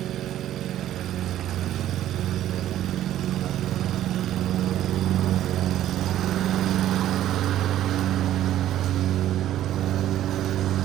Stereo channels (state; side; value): quieter; left; 12.5 dB